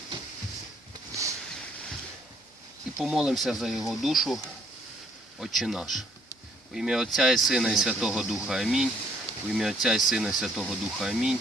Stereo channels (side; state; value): both; normal; correlation 0.64